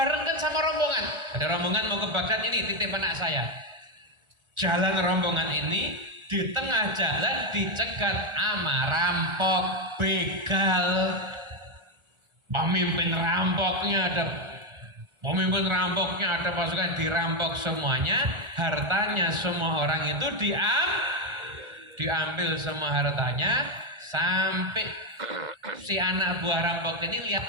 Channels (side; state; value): left; late; 1.4 ms